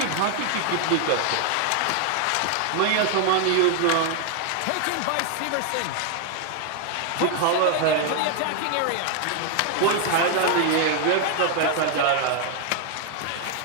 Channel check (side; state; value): both; different; correlation 0.00